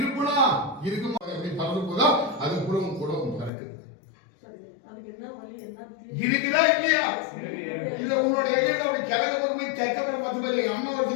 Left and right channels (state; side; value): drops out; right; at 3.5 s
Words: இருக்குமா எப்படி பறந்து போதா அது கூட பறக்குது. இருக்குதா இல்லையா? இல்ல உன்னோட இடையில அப்படி கிழக்கு பக்கம் போய் தெக்க பக்கம் 10 பேர் எங்க அம்மா